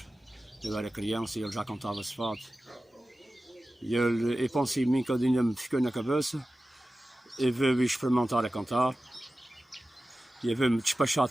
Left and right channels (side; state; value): both; normal; correlation 0.95